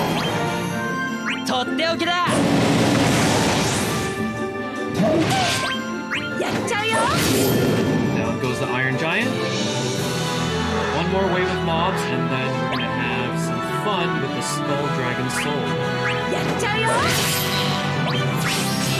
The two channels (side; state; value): both; identical; correlation 1.00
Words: とっておきだやっちゃうよ Down goes the Iron Giant. One more wave of mobs, and then we're gonna have some fun with the Skull Dragon Soul. やっちゃうよ